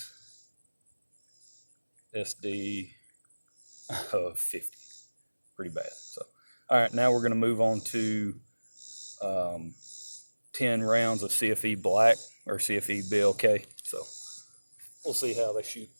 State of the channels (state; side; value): inverted; both; correlation -1.00